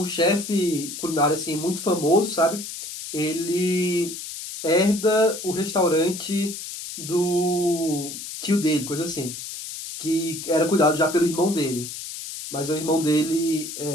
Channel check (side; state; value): left; noise; hiss, 9 dB below the sound